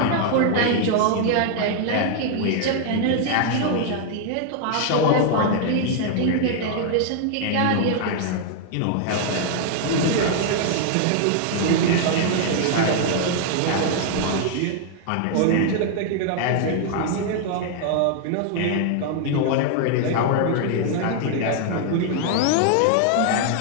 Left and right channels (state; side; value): different; both; correlation 0.00